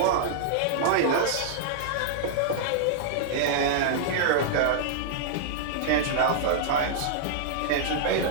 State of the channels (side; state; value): both; different; correlation -0.01